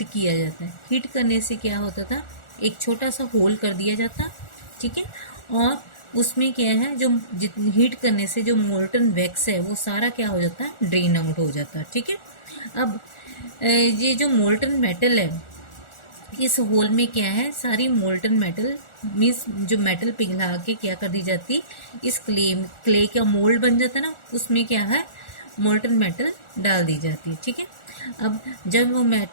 किया जाता है। हीट करने से क्या होता था, एक छोटा सा होल कर दिया जाता, ठीक है, और उसमें क्या है, जो हीट करने से जो मोल्टन वैक्स है वो सारा क्या हो जाता है, ड्रेन आउट हो जाता है, ठीक है। अब ये जो मोल्टन मेटल है इस होल में क्या है, सारी मोल्टन मेटल मीन्स जो मेटल पिघला के क्या कर दी जाती, इस क्ले का मोल्ड बन जाता है ना, उसमें क्या है मोल्टन मेटल डाल दी जाती, ठीक है। अब जब वो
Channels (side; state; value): right; late; 1.4 ms